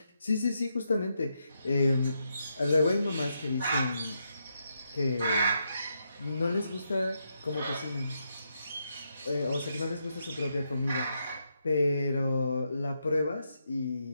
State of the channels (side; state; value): both; inverted; correlation -0.81